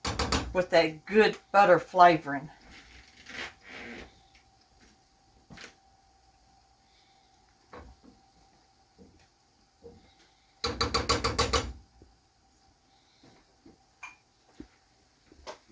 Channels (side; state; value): both; identical; correlation 1.00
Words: with a good butter flavoring.